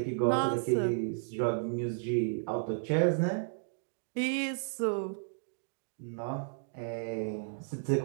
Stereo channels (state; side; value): silent; left; digital silence